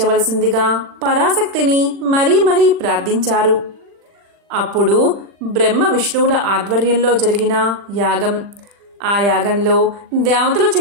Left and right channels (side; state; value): left; late; 40 ms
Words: పరాశక్తిని మరీ మరీ ప్రార్థించారు. అప్పుడు బ్రహ్మ విష్ణువుల ఆధ్వర్యంలో జరిగిన యాగం, ఆ యాగంలో దేవతలు